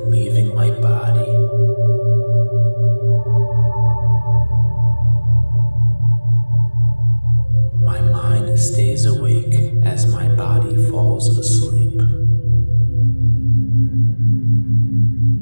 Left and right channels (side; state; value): both; inverted; correlation -1.00